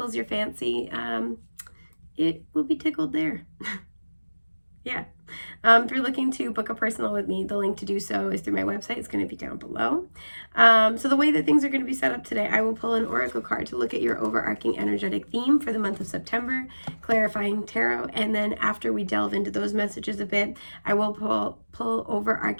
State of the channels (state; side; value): inverted; both; correlation -1.00